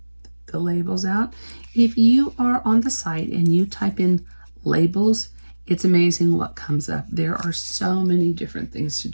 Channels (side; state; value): both; inverted; correlation -1.00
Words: the labels out. If you are on the site and you type in labels, it's amazing what comes up. There are so many different things to